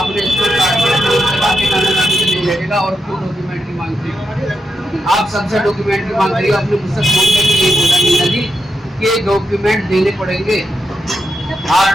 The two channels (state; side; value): normal; both; correlation 0.86